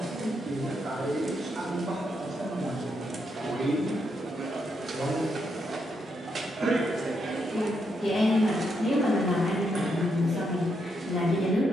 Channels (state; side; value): normal; both; correlation 0.79